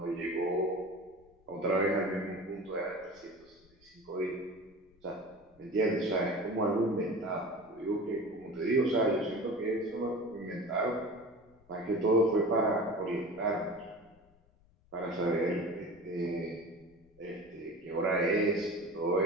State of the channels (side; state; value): left; noise; rumble, 30 dB below the sound